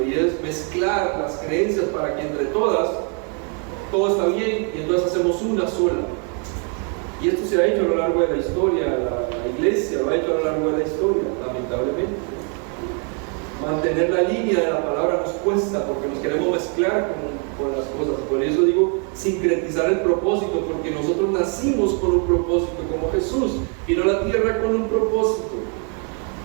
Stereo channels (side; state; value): left; quieter; 39.3 dB